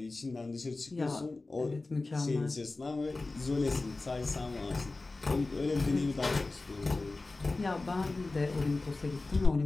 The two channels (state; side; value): quieter; right; 3.4 dB